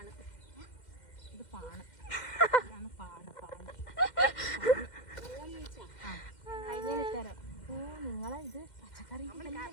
ഇതാണ് പാണ്. കഴിഞ്ഞിത്തരാം. ഓ നിങ്ങളെ ഇത് പച്ചക്കറി.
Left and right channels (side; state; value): right; late; 2.1 ms